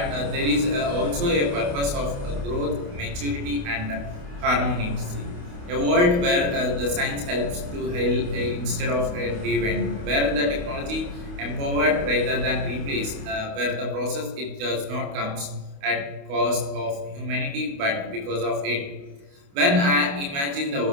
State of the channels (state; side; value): late; left; 28 ms